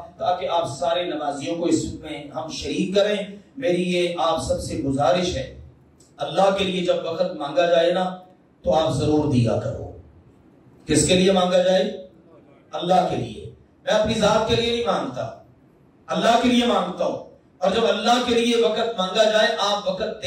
تاکہ آپ سارے نمازیوں کو اس میں ہم شریک کریں۔ میری یہ آپ سب سے گزارش ہے، اللہ کے لیے جب وقت مانگا جائے نا تو آپ ضرور دیا کرو۔ کس کے لیے مانگا جائے؟ اللہ کے لیے۔ میں اپنی ذات کے لیے نہیں مانگتا، اللہ کے لیے مانگتا ہوں۔ اور جب اللہ کے لیے وقت مانگا جائے، آپ وقت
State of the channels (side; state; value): both; identical; correlation 1.00